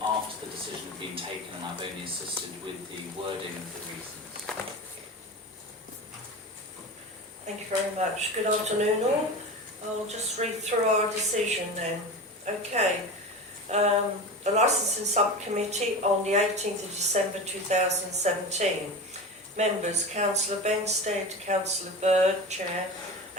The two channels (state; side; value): normal; both; correlation 0.28